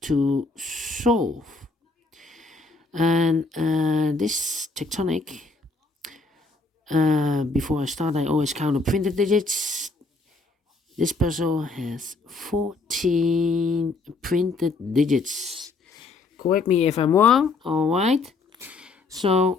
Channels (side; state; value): right; quieter; 3.7 dB